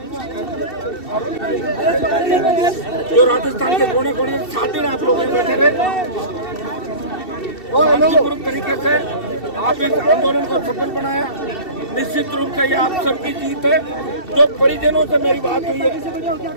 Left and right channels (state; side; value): late; right; 2.7 ms